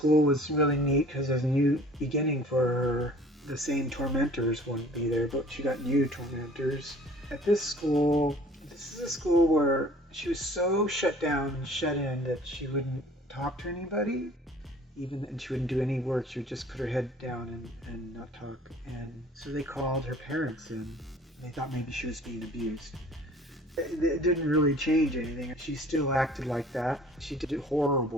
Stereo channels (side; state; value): both; normal; correlation 0.50